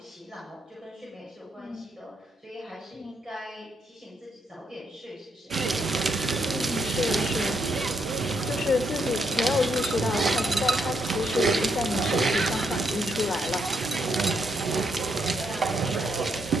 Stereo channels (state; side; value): normal; both; correlation 0.77